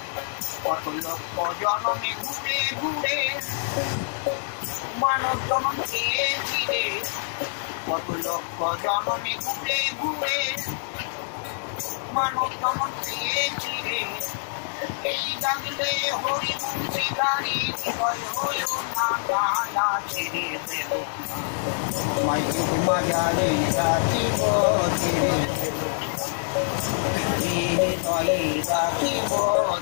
কত লক্ষ জনমে ঘুরে ঘুরে মানব জনম চেয়েছি রে কত লক্ষ জনমে ঘুরে ঘুরে মানব জনম চেয়েছি রে এই জাগলে হরি মুন্সি গাড়ি হৃদয় হইল না গালা ছেড়ে দেব মায়ের মাজারে রাখিব ছেড়ে দেব হৃদয়ে রাখিব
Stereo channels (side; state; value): right; silent; digital silence